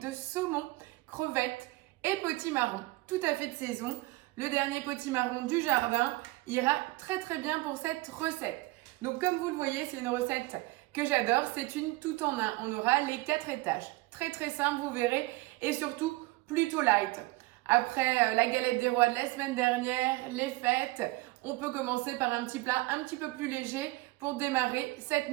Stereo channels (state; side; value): quieter; left; 21.3 dB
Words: saumon, crevettes et potimarron, tout à fait de saison. Le dernier potimarron du jardin ira très bien pour cette recette. Donc comme vous le voyez, c'est une recette que j'adore, c'est une tout en un. On aura les 4 étages. Très simple, vous verrez, et surtout plutôt light. Après la galette des rois de la semaine dernière, les fêtes, on peut commencer par un petit plat un petit peu plus léger pour démarrer cette